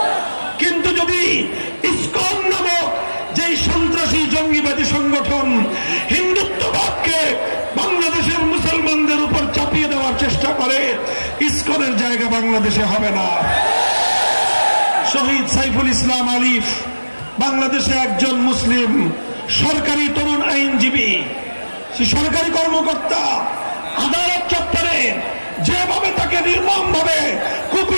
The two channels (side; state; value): both; inverted; correlation -1.00